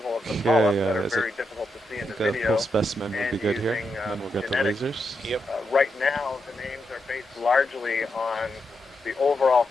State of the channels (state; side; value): normal; both; correlation 0.84